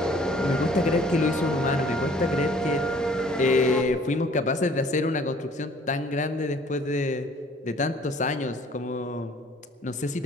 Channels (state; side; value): normal; both; correlation 0.55